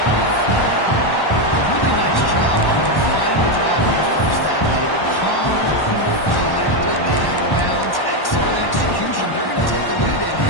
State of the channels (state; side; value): late; right; 1.1 ms